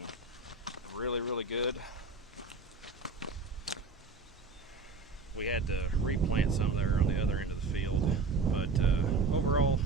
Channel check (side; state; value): left; quieter; 4.2 dB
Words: really good. We had to replant some there on the other end of the field, but overall